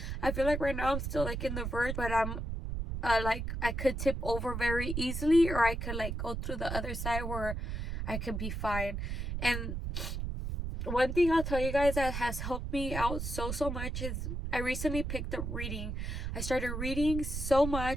I feel like right now I'm still like in the verge, but I'm like I could tip over very easily, or I could like go through the other side where I could be fine. And one thing I'll tell you guys that has helped me out so much is I recently picked up reading. I started reading so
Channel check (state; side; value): noise; right; rumble, 3 dB below the sound